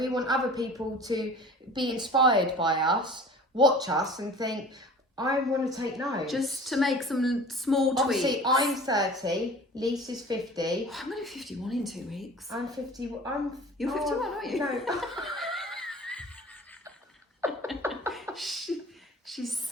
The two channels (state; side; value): normal; both; correlation 0.43